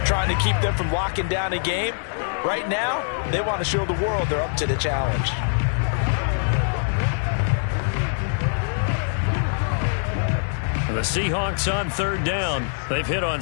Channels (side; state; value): right; silent; 63 dB below the other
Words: trying to keep them from locking down a game. Right now, they want to show the world they're up to the challenge. The Seahawks on third down. They've hit on